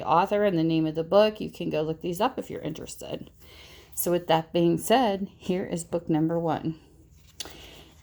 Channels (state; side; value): identical; both; correlation 1.00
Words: author, and the name of the book. You can go look these up if you're interested. So with that being said, here is book number 1.